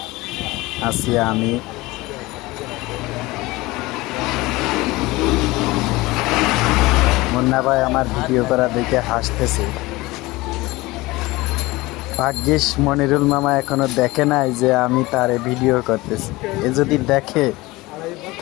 আছি আমি। মুন্না ভাই আমার ভিডিও করা দেখে হাসতেছে। ভাগ্যিস মনিরুল মামা এখনো দেখে নাই যে আমি তারে ভিডিও করতেছি। এ যদি দেখে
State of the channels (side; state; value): right; quieter; 20.7 dB